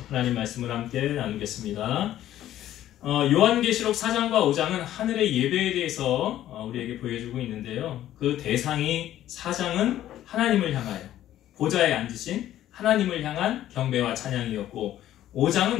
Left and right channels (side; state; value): right; quieter; 12.7 dB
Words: 하나님 말씀을 함께 나누겠습니다. 요한계시록 4장과 5장은 하늘의 예배에 대해서 우리에게 보여주고 있는데요. 그 대상이 4장은 하나님을 향하여 보좌에 앉으신 하나님을 향한 경배와 찬양이었고,